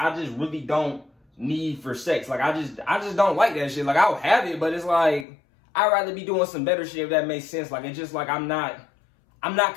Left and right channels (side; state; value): right; drops out; at 5.2 s